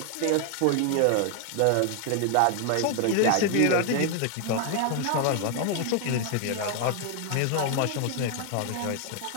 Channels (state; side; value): different; both; correlation 0.00